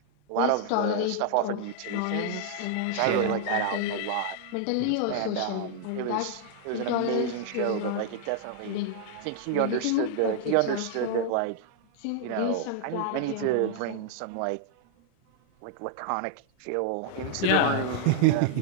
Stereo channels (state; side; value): different; both; correlation 0.00